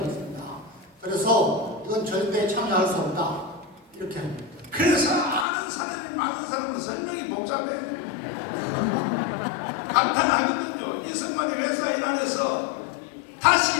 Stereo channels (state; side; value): drops out; right; at 5.5 s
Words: 했습니다. 그래서 이건 절대 참여할 수 없다 이렇게 합니다. 그래서 아는 사람이 많은 사람은 설명이 복잡해. 감탄하거든요. 이승만이 왜 사인 안 해서